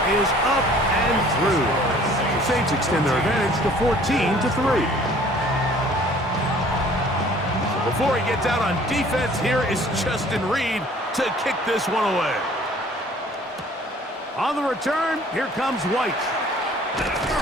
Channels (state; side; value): normal; both; correlation 0.53